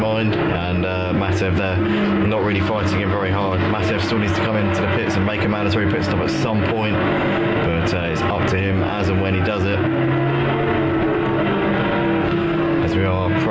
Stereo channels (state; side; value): identical; both; correlation 1.00